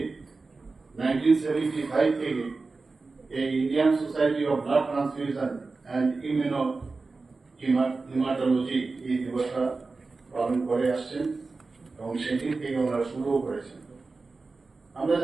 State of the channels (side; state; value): left; quieter; 3.9 dB